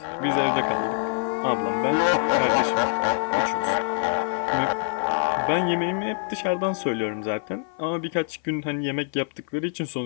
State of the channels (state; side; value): silent; right; 56 dB below the other